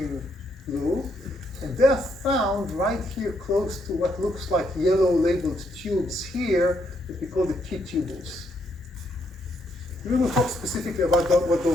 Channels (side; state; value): both; normal; correlation 0.75